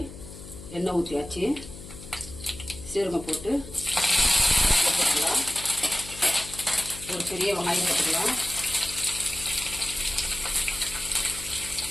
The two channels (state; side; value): noise; left; hum, 14 dB below the sound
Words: எண்ணெய் ஊற்றியாச்சு. சீரகம் போட்டு போட்டுக்கலாம். ஒரு பெரிய வெங்காயம் போட்டுக்கலாம்.